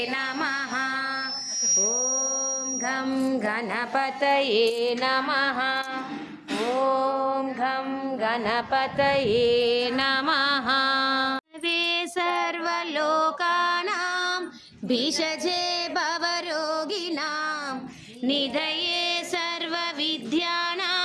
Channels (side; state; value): both; identical; correlation 1.00